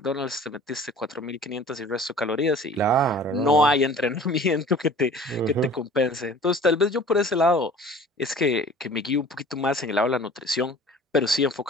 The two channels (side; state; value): both; normal; correlation 0.46